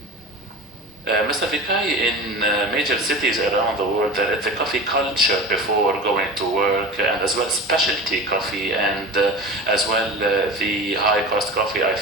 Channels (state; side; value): normal; both; correlation 0.33